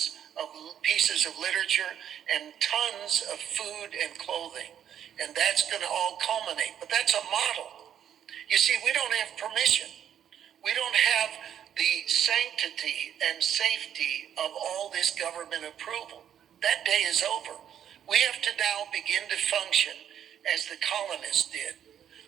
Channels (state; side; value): quieter; left; 9.6 dB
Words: of pieces of literature and tons of food and clothing. And that's going to all culminate. But that's a model. You see, we don't have permission. We don't have the sanctity and safety of all this government approval. That day is over. We have to now begin to function as the colonists did.